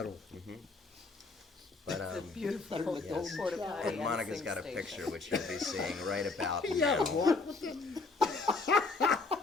But, It's a beautiful yes. porta potty. and Monica's got a picture, which you'll be seeing right about Yeah, now. what?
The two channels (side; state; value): right; quieter; 3.8 dB